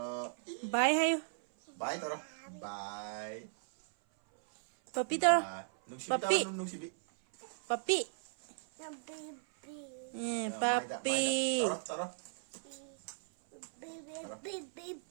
Bye hay. Bye tao. Bye. Papi tôi. Papi. Papi. Papi. Tao.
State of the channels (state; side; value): silent; left; 53 dB below the other